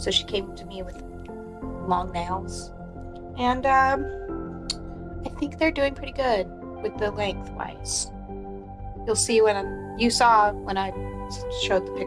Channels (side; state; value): both; identical; correlation 1.00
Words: she came to me with long nails, and I think they're doing pretty good with the lengthwise. You'll see you saw when I showed the